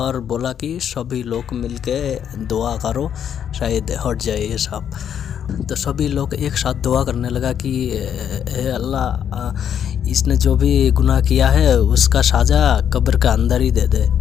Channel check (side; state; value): right; quieter; 8.9 dB